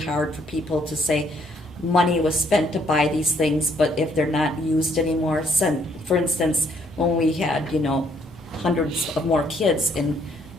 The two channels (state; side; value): normal; both; correlation 0.67